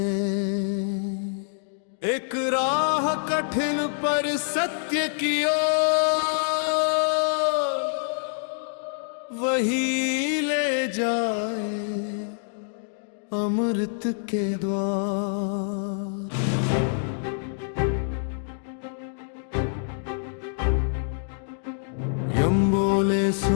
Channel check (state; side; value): silent; right; digital silence